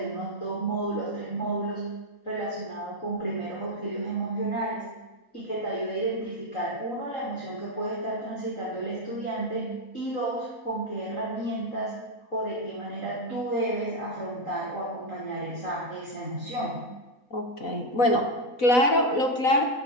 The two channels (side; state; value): right; late; 4.0 ms